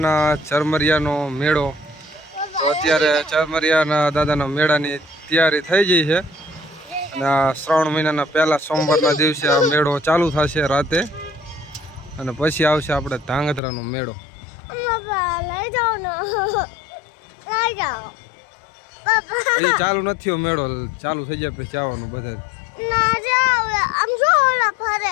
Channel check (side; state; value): right; drops out; at 13.6 s